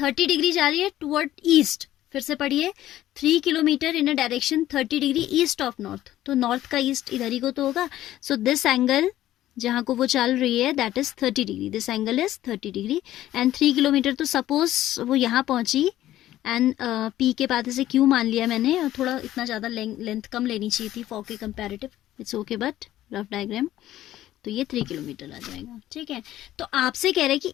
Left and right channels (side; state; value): right; quieter; 13.8 dB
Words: डिग्री जा रही है टुवर्ड ईस्ट. फिर से पढ़िए, 3 kilometre in direction 30 degree east of north. तो नॉर्थ का ईस्ट इधर ही को तो होगा. सो दिस एंगल जहां को वो चल रही है that is 30 degree. This angle is 30 degree and 3 kilometre. तो सपोज वो यहाँ पहुंची एंड पी के बाद से क्यू मान लिया मैंने, और थोड़ा इतना ज़्यादा लेंथ कम लेनी चाहिए थी फॉर के comparative. It's okay, but rough diagram. तो ये 3 किलोमीटर आ जाएगा. ठीक है, तो आपसे कह रहे हैं कि